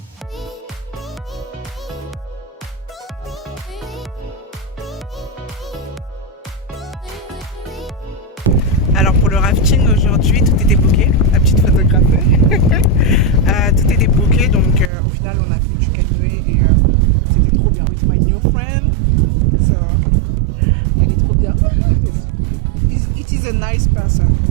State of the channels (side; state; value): left; drops out; at 14.9 s